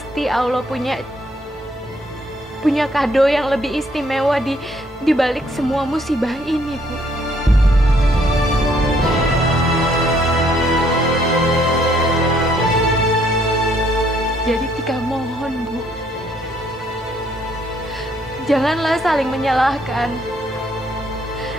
Allah punya kado yang lebih istimewa di balik semua musibah ini, Bu. Jadi Tika mohon, Bu, janganlah saling menyalahkan.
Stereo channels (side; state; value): both; normal; correlation 0.67